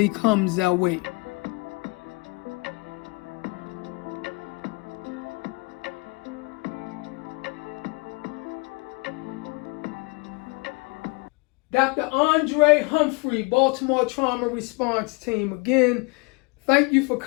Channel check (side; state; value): right; quieter; 28.9 dB